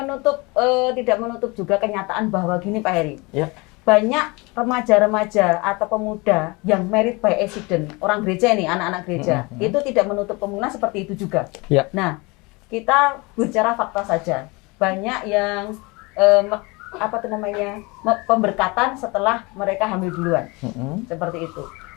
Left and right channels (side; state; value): right; quieter; 26.1 dB